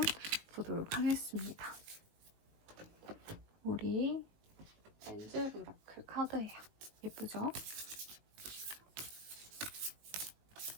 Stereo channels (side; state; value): left; late; 19 ms